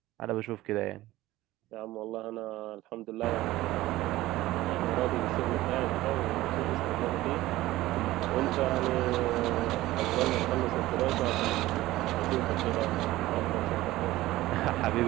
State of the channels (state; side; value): quieter; left; 16.8 dB